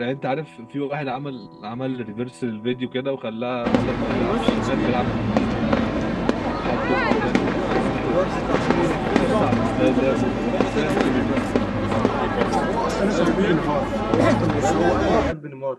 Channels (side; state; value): both; identical; correlation 1.00